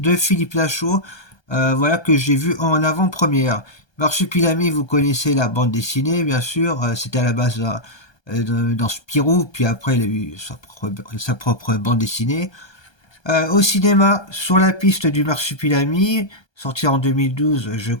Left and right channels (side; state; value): right; late; 1.2 ms